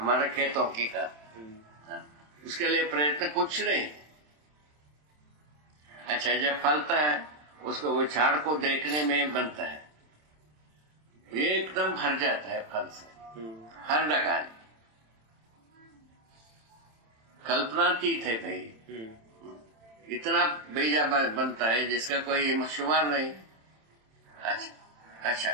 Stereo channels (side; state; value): left; late; 27 ms